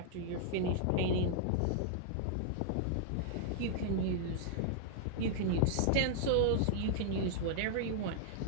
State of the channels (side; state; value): both; different; correlation -0.01